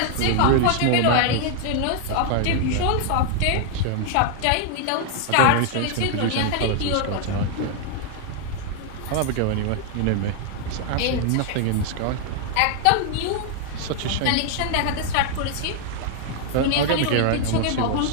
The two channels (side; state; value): both; different; correlation 0.00